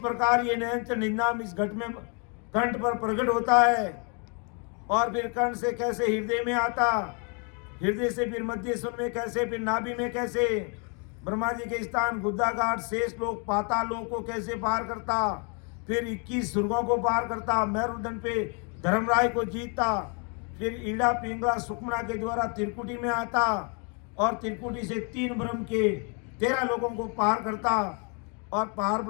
ये नयनचर निन्याम इस घट में कंठ पर प्रकट होता है और फिर कंठ से कैसे हृदय में आता, हृदय से फिर मध्य सुन में कैसे, फिर नाभि में कैसे, ब्रह्मा जी के स्थान गुद्दाघाट शेष लोक पाताल लोक को कैसे पार करता, फिर 21 स्वर्गों को पार करता, मेरुदंड पे धर्मराय को जीतता, फिर ईड़ा पिंगला सुकमना के द्वारा त्रिकुटी में आता और त्रिकुटी से 3 ब्रह्म के 13 लोगों को पार करता और पार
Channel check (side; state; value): right; quieter; 36.8 dB